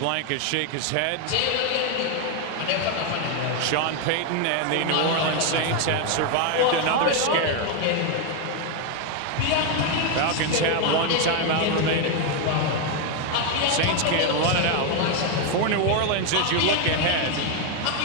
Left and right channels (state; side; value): different; both; correlation 0.01